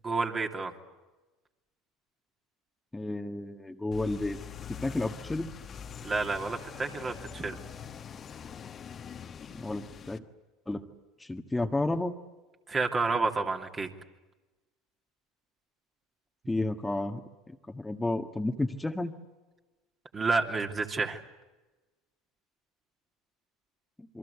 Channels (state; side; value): normal; both; correlation 0.88